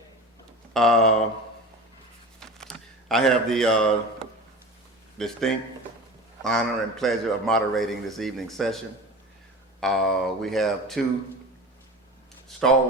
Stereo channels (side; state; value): both; normal; correlation 0.33